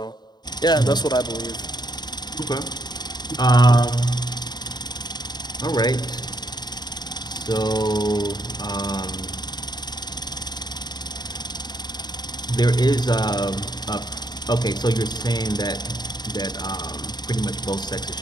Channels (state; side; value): late; right; 0.20 ms